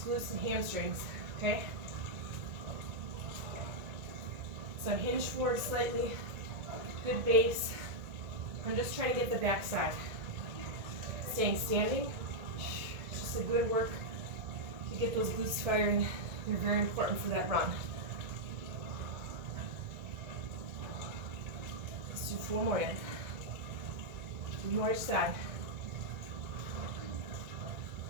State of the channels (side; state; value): left; late; 1.9 ms